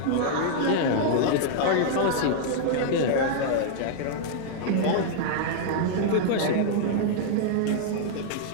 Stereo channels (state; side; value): different; both; correlation -0.01